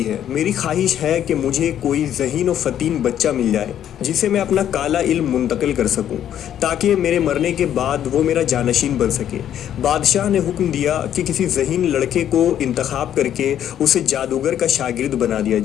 ہے۔ میری خواہش ہے کہ مجھے کوئی ذہین و فطین بچہ مل جائے جسے میں اپنا کالا علم منتقل کر سکوں تاکہ میرے مرنے کے بعد وہ میرا جانشین بن سکے۔ بادشاہ نے حکم دیا کہ کسی ذہین لڑکے کو انتخاب کر کے اسے جادوگر کا شاگرد بنا دیا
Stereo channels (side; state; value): right; quieter; 10.4 dB